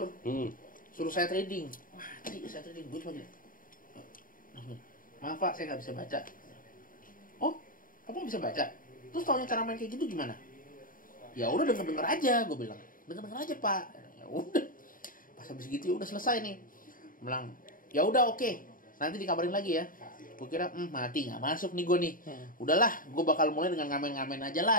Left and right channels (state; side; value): late; right; 0.40 ms